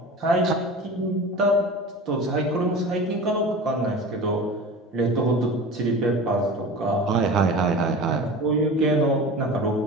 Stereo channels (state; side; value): normal; both; correlation 0.35